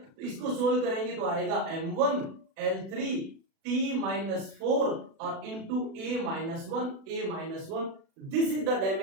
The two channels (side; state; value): left; late; 36 ms